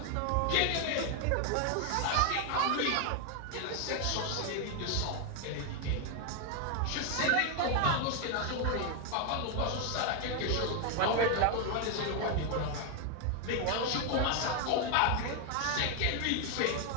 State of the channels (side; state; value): both; different; correlation 0.01